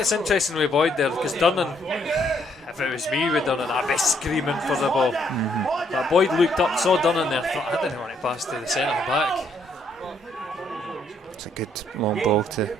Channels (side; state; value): both; normal; correlation 0.70